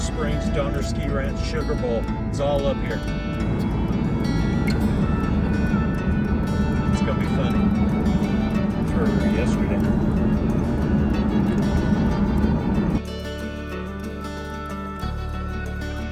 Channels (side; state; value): both; identical; correlation 1.00